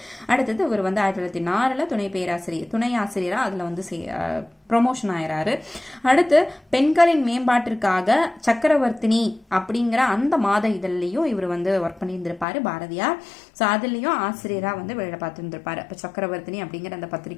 அடுத்தது இவர் வந்து 1904 துணை ஆசிரியராக அதில் வந்து ப்ரொமோஷன் ஆயிராரு. அடுத்து பெண்களின் மேம்பாட்டிற்காக சக்கரவர்த்தினி அப்படிங்கிற அந்த மாத இதழ்லையும் இவர் வந்து ஒர்க் பண்ணியிருந்திருப்பாரு பாரதியார். ஸோ அதுலேயும் ஆசிரியராக வந்து வேலை பார்த்துருந்துருப்பாரு. இப்போ சக்கரவர்த்தினி அப்படிங்கிற அந்த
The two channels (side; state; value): right; drops out; at 12.5 s